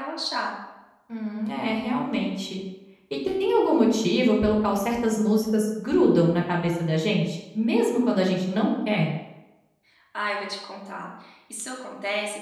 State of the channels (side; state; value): both; identical; correlation 1.00